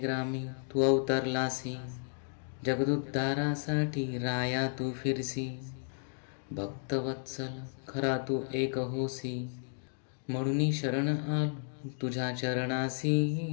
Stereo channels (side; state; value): right; silent; 56 dB below the other